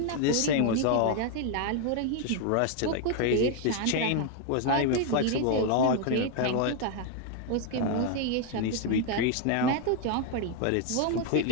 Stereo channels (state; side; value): different; both; correlation 0.01